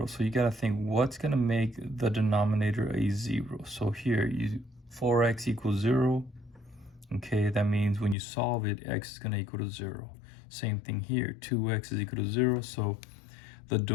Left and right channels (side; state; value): right; drops out; at 8.2 s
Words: So you got to think, what's going to make the denominator a 0? So here, 4x equals 0. Okay, that means when you solve it, x is going to equal to 0. Same thing here, 2x is equal to 0. So the